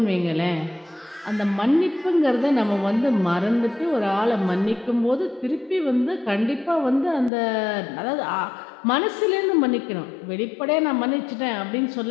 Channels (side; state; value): right; drops out; at 7.3 s